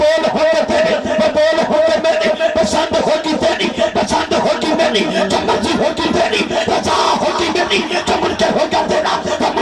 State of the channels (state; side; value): identical; both; correlation 1.00